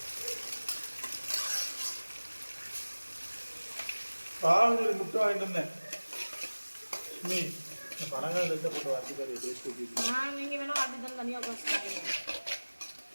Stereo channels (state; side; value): inverted; both; correlation -1.00